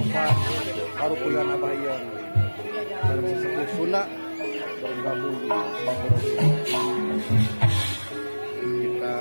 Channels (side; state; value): both; inverted; correlation -1.00